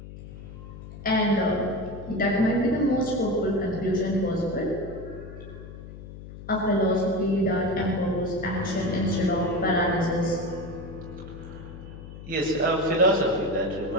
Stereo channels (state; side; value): noise; left; hum, 13 dB below the sound